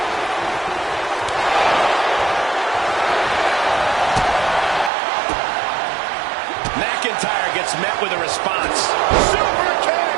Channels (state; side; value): drops out; left; at 4.9 s